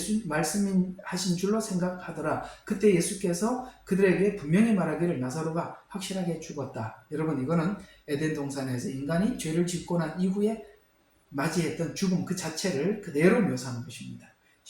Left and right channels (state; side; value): identical; both; correlation 1.00